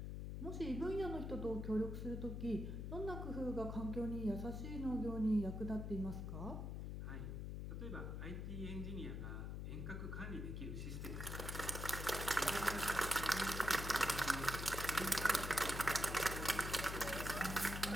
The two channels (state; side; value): noise; left; hum, 4 dB below the sound